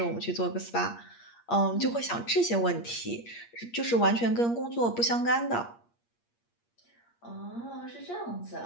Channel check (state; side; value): late; right; 8.5 ms